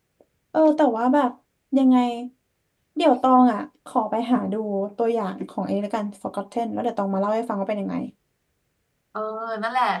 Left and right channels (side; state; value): both; identical; correlation 1.00